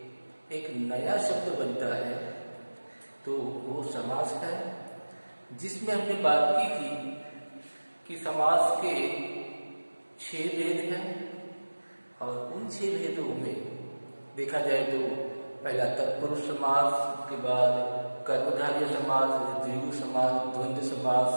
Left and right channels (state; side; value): inverted; both; correlation -1.00